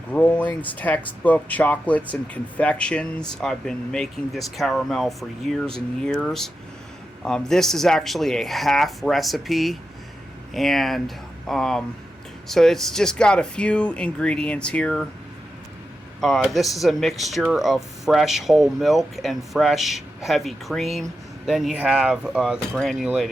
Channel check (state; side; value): normal; both; correlation 0.89